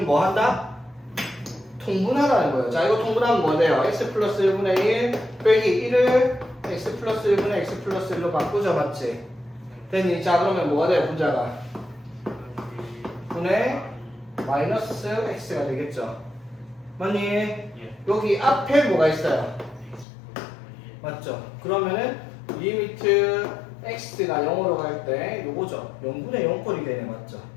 뭐 한다? 통분하라는 거예요. 자, 이거 통분하면 뭐 돼요? x 플러스 1분의 1 빼기 1을 x 플러스 1분의 x 플러스 1로 바꾸죠. 맞지? 됐니? 자, 그러면 뭐가 돼요? 분자가? 분의 마이너스 x가 되겠죠. 맞니? 여기 앞에 뭐가 있어요? 맞죠? 그러면은 리미트 x가 0으로 갈 때 요거죠. 0분의 0꼴이 되네. 맞죠?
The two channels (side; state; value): right; drops out; at 20.1 s